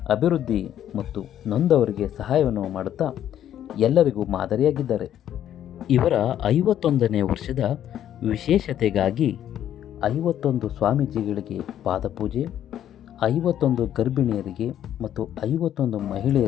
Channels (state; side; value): quieter; right; 10.8 dB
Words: ಅಭಿವೃದ್ಧಿ ಮತ್ತು ನೊಂದವರಿಗೆ ಸಹಾಯವನ್ನು ಮಾಡುತ್ತಾ ಎಲ್ಲರಿಗೂ ಮಾದರಿಯಾಗಿದ್ದಾರೆ. ಇವರ 51ನೇ ವರ್ಷದ ವಿಶೇಷತೆಗಾಗಿ 51 ಸ್ವಾಮೀಜಿಗಳಿಗೆ ಪಾದಪೂಜೆ, 51 ಗರ್ಭಿಣಿಯರಿಗೆ ಮತ್ತು 51